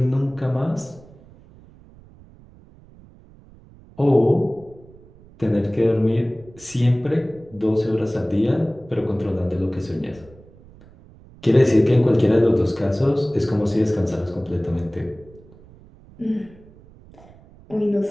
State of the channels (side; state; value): right; noise; rumble, 24 dB below the sound